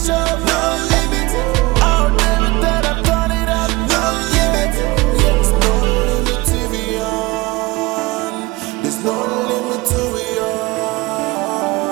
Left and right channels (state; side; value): quieter; left; 22.1 dB